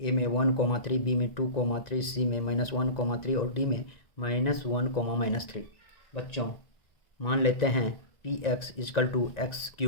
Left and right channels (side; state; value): right; late; 1.9 ms